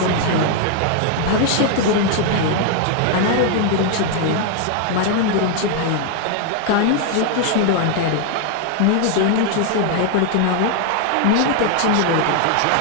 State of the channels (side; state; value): both; different; correlation 0.00